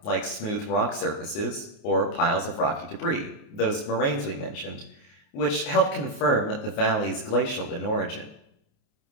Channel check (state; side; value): late; right; 28 ms